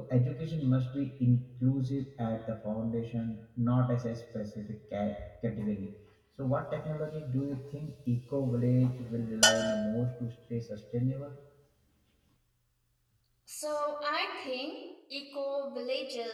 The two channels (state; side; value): identical; both; correlation 1.00